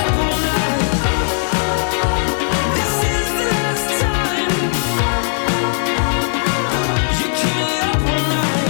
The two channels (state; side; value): silent; right; digital silence